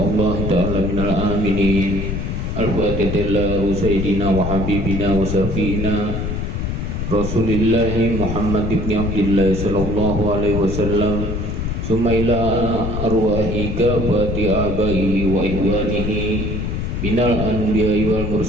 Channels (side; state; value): left; noise; rumble, 3 dB below the sound